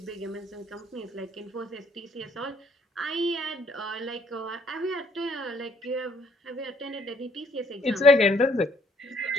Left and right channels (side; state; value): both; normal; correlation 0.65